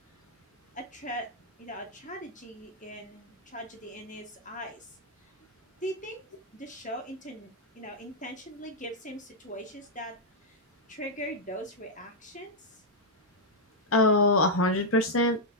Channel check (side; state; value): both; normal; correlation -0.04